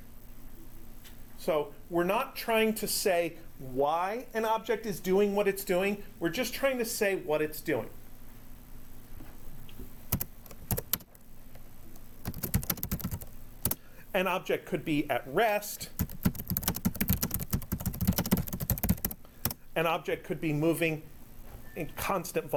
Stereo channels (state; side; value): identical; both; correlation 1.00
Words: So we're not trying to say why an object is doing what it's doing. We're just trying to say what it's doing. An object could be at rest. An object could be moving in constant